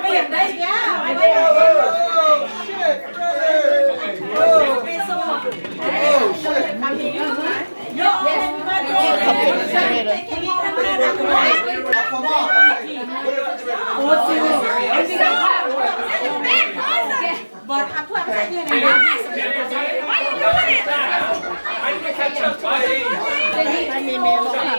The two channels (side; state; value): both; inverted; correlation -1.00